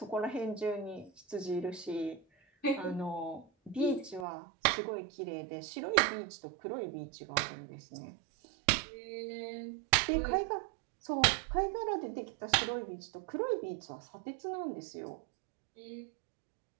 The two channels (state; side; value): drops out; left; at 4.2 s